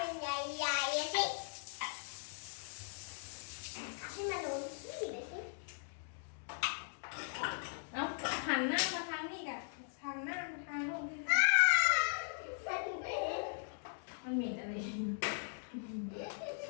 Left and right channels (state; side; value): silent; right; digital silence